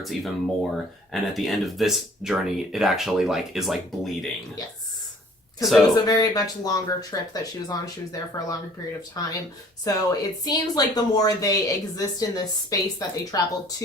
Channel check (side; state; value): both; normal; correlation 0.54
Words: even more, and at the end of this journey, it actually is bleeding. Yes. Because it was a very much longer trip that she was on. She was there for a longer period of time. So it seems like the more they exist in this space that they travel